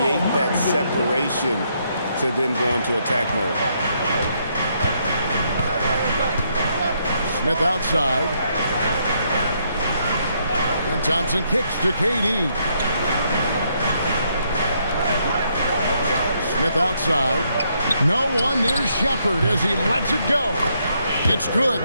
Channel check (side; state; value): both; inverted; correlation -0.74